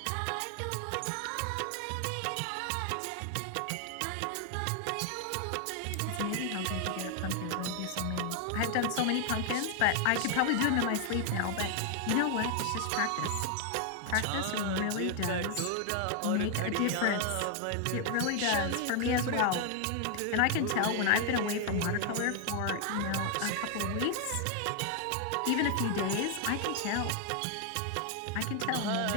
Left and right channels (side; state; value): both; different; correlation 0.00